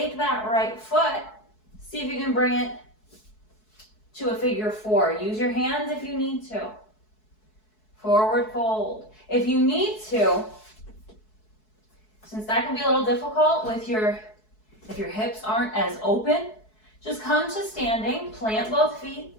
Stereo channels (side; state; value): right; late; 4.7 ms